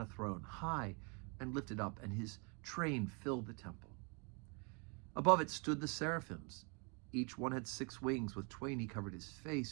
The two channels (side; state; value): left; quieter; 34.7 dB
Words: throne, high and lifted up, and his train filled the temple. Above it stood the seraphims. Each one had 6 wings. With twain he covered his